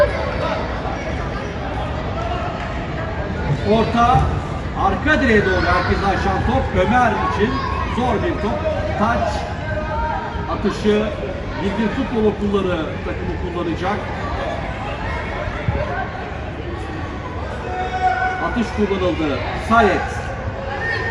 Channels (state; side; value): identical; both; correlation 1.00